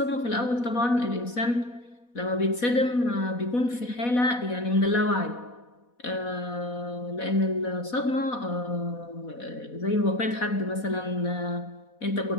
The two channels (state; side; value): late; right; 4.1 ms